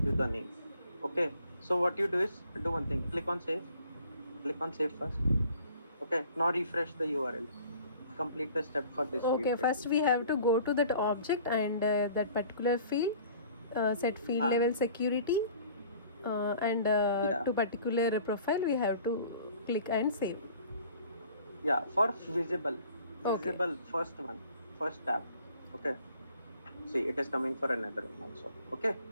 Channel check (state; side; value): inverted; both; correlation -0.52